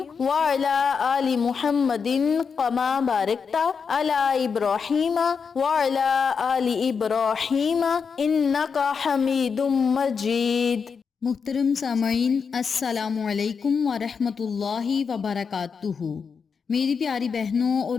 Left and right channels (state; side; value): quieter; right; 5.9 dB